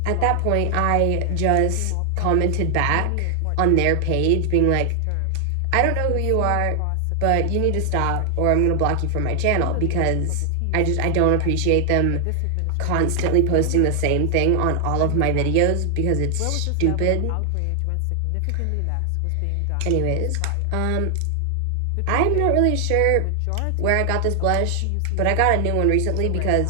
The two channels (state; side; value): different; both; correlation 0.00